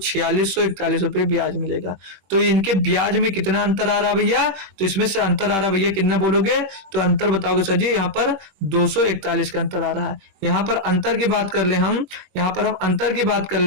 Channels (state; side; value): late; left; 21 ms